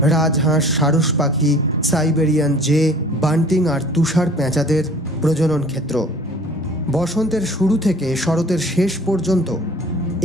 রাজহাঁস, সারস পাখি, সাইবেরিয়ান জে, বান্টিং আর তুষার পেঁচাদের প্রজনন ক্ষেত্র। বসন্তের শুরু থেকে শরতের শেষ পর্যন্ত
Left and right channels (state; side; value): normal; both; correlation 0.48